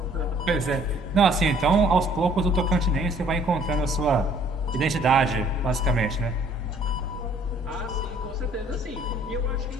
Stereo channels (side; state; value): both; normal; correlation 0.58